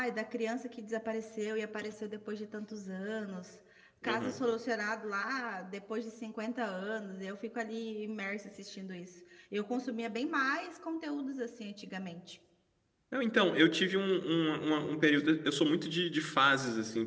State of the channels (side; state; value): both; identical; correlation 1.00